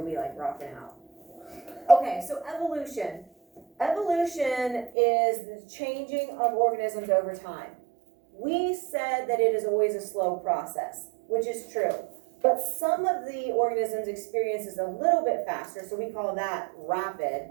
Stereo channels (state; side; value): drops out; left; at 4.9 s